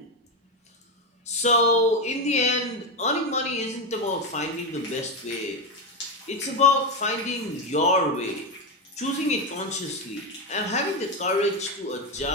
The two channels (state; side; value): normal; both; correlation 0.11